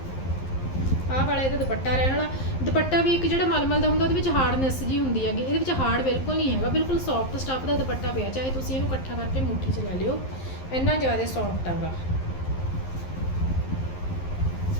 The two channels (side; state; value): right; late; 11 ms